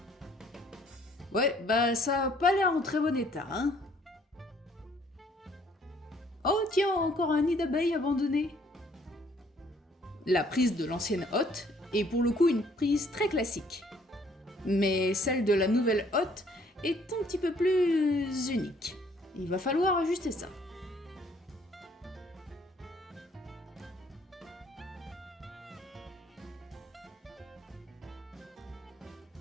Ouais, bah ça a pas l'air en très bon état, hein. Oh tiens, encore un nid d'abeilles abandonné. La prise de l'ancienne hotte est pour le coup une prise très classique. Mais celle de la nouvelle hotte est un petit peu plus unique. Il va falloir ajuster ça.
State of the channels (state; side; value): normal; both; correlation 0.62